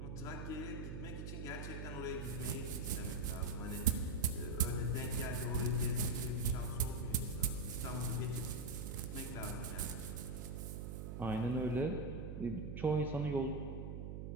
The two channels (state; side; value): noise; right; hum, 5 dB below the sound